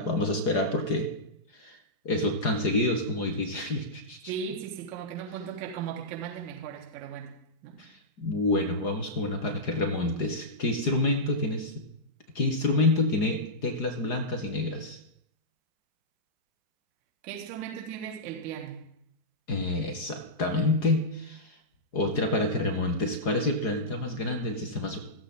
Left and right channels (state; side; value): late; right; 4.8 ms